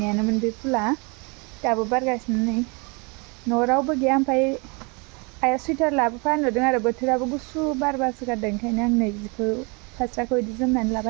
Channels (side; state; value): left; quieter; 30.7 dB